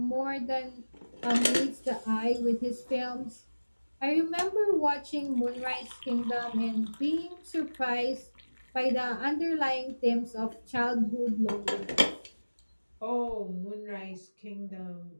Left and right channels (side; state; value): both; inverted; correlation -1.00